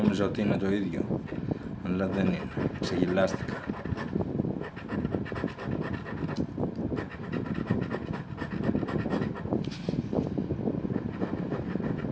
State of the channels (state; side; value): identical; both; correlation 1.00